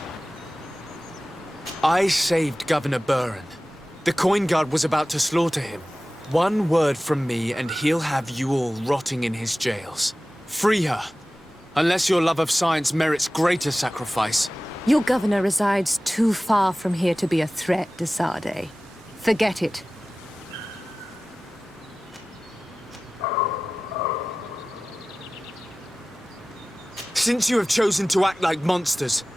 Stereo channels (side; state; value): both; normal; correlation 0.97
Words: I saved Governor Buren. The coin guard was about to slaughter him. One word from me and he'll have you all rotting in his jails. Free her. Unless your love of science merits greater sacrifice. Your governor resides too far from here to be a threat, de Sardet. Forget it. Since you have chosen to act like monsters,